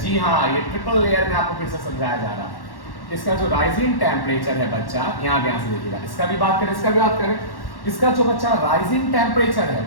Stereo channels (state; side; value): late; right; 1.1 ms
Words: हाँ, ये ट्रिपल लेयर में आपको फिर से समझाया जा रहा है, इसका जो राइजिंग टेम्परेचर है बच्चा, यहाँ ध्यान से देखिएगा, इसका भी बात करें, इसका भी बात करें, इसका जो बच्चा राइजिंग टेम्परेचर है